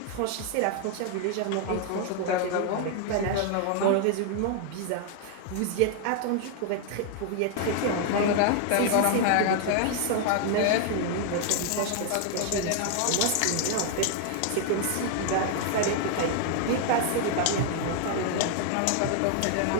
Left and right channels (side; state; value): both; different; correlation 0.00